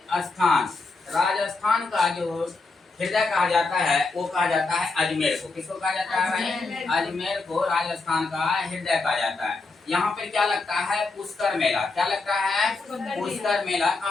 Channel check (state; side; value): quieter; right; 3.7 dB